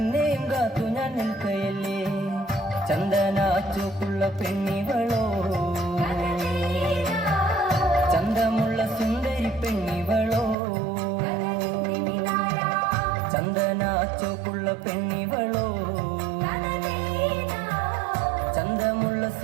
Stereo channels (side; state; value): left; drops out; at 10.6 s